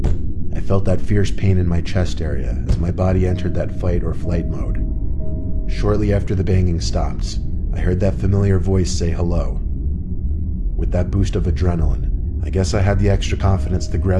I felt that fierce pain in my chest area as my body entered that fight or flight mode. Shortly after the banging stopped, I heard that familiar voice say hello. With that boost of adrenaline, I guess I had the extra confidence to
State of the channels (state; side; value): identical; both; correlation 1.00